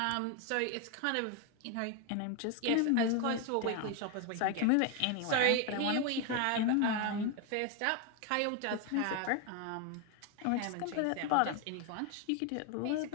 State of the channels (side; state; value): both; different; correlation 0.01